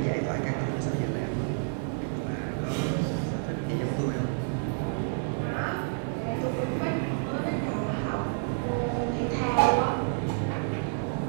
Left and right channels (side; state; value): left; silent; digital silence